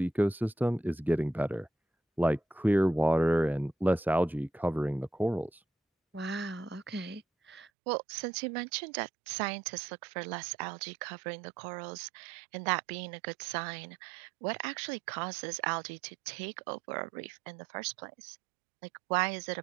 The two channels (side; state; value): left; drops out; at 7.7 s